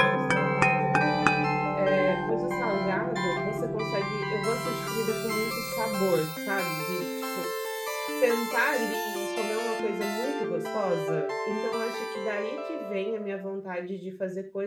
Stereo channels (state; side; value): identical; both; correlation 1.00